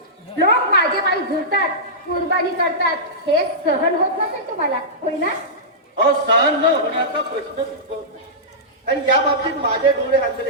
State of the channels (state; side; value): normal; both; correlation -0.15